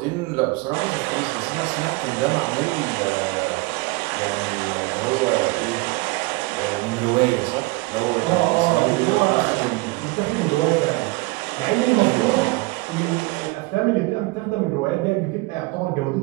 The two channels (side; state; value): left; quieter; 23.6 dB